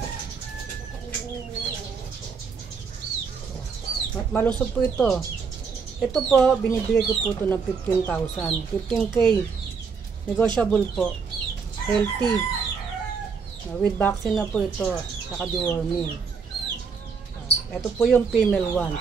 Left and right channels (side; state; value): left; quieter; 5.5 dB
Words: Malusog po ito. Ito po, binibigay ko po ito ng 15,000. 15K. Negotiable po. Healthy. With vaccine na po ito. Saka deworming. Ito po yung female